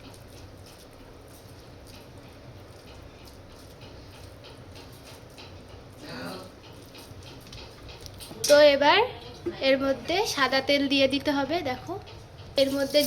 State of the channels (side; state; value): both; identical; correlation 1.00